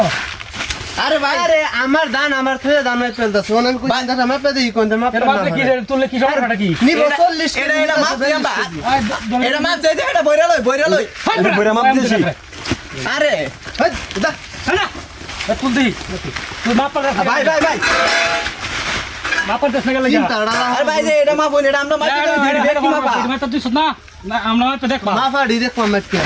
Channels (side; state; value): both; identical; correlation 1.00